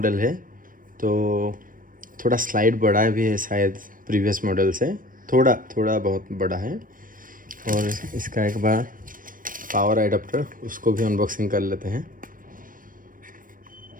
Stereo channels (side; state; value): left; late; 0.40 ms